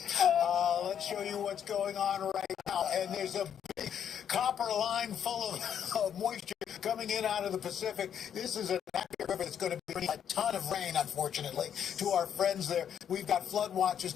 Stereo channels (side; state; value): right; quieter; 8.8 dB